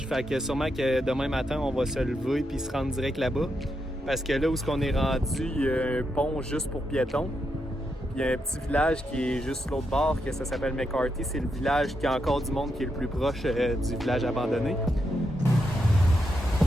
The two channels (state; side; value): normal; both; correlation 0.83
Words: Fait que sûrement que demain matin, on va se lever puis se rendre direct là-bas. Parce que là où on est rendu, il y a un pont juste pour piétons. Puis il y a un petit village qui est juste l'autre bord, que ça s'appelle McCarthy. C'est le village qui a encore du monde qui est le plus proche du village abandonné.